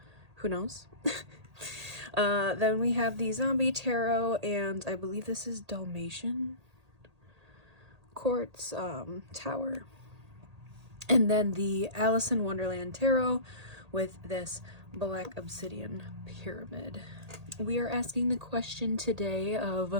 who knows? Then we have the Zombie Tarot, and I believe this is Dalmatian Quartz Tower. And then the Alice in Wonderland Tarot with this Black Obsidian Pyramid. We are asking the question today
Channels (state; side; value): late; left; 1.8 ms